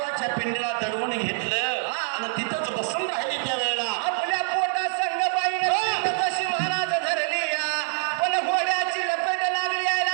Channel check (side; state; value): left; silent; 61 dB below the other